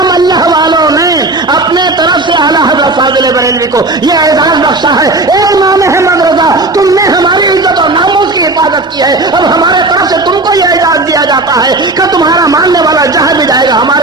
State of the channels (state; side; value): quieter; left; 3.0 dB